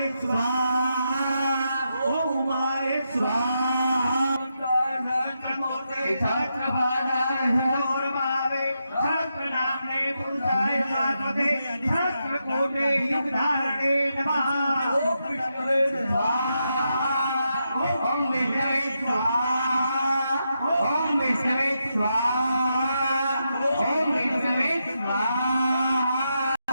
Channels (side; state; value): both; inverted; correlation -0.84